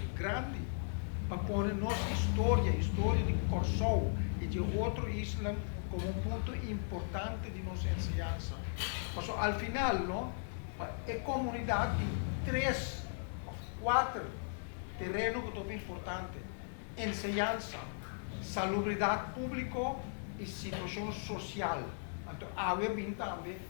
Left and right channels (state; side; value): silent; right; digital silence